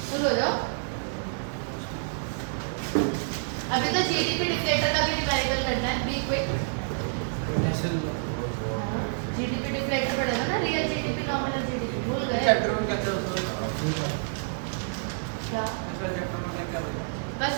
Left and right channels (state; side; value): silent; left; digital silence